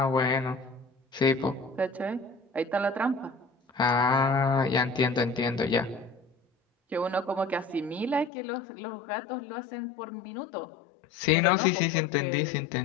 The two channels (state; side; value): drops out; right; at 8.3 s